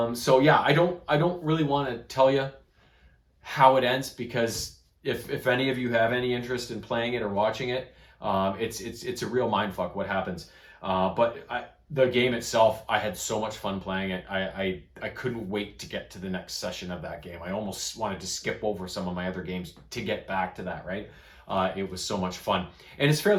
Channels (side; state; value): both; identical; correlation 1.00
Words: yeah, I don't really want to tell you how it ends, because if any of you have any interest in playing it or watching it, it's a real mind fuck what happens. The game itself, I had so much fun playing it. I couldn't wait to get to the next session of that game. I almost wanted to skip over some of my other games to get back to that. Right, it was so much fun, and it's